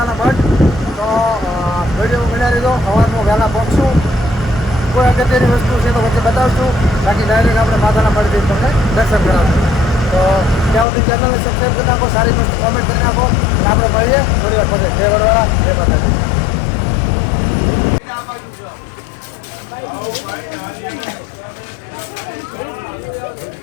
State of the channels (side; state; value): right; drops out; at 10.9 s